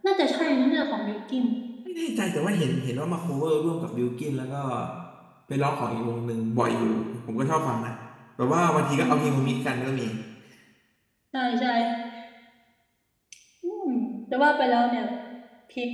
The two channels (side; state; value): both; identical; correlation 1.00